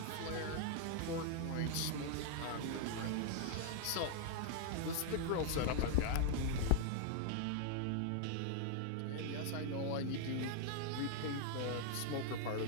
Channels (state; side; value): different; both; correlation 0.00